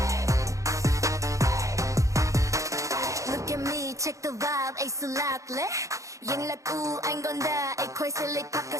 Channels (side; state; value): left; late; 0.15 ms